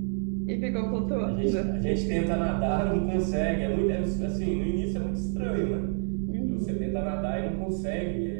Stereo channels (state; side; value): silent; left; digital silence